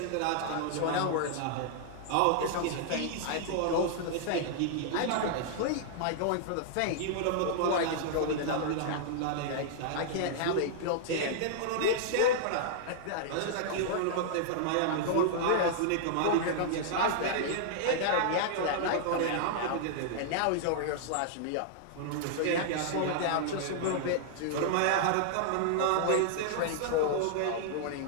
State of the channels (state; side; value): different; both; correlation -0.01